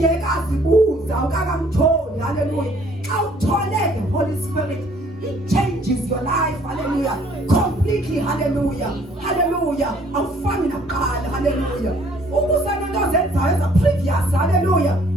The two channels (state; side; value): normal; both; correlation 0.60